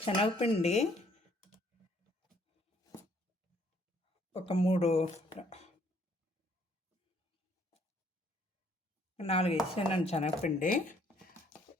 శనగపిండి ఒక 4 వేసానండి. శనగపిండి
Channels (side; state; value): both; normal; correlation 0.64